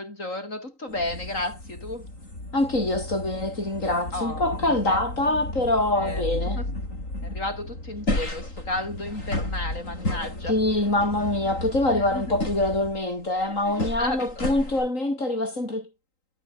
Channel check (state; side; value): late; right; 3.9 ms